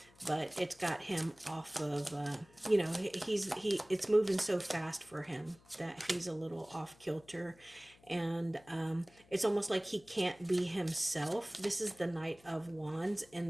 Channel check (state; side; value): noise; left; hum, 27 dB below the sound